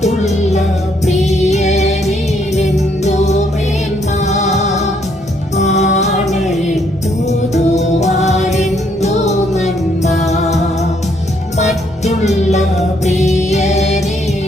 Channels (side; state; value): both; normal; correlation 0.70